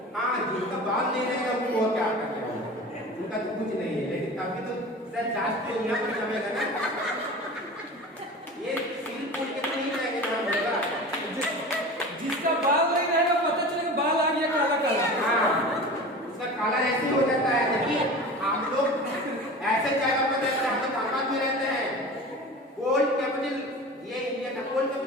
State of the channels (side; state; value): both; normal; correlation 0.35